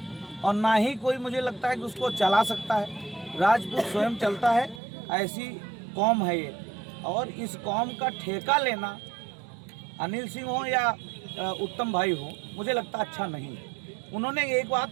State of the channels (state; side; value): drops out; left; at 4.8 s